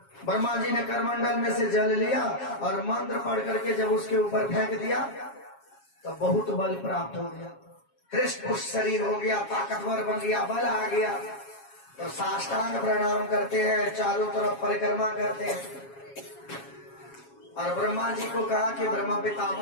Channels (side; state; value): right; late; 7.3 ms